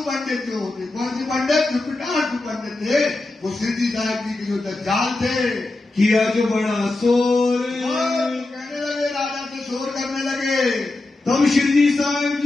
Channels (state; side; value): quieter; right; 3.0 dB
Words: पंडित जो होते, कौन सी पंडित? जो पिटार्थू पंडित थे, वो सिद्धि साहब जी के जो दज्जाल थे। किया जो बड़ा शोर, कहने लगे, राजा से शोर करने लगे। तब श्री साहब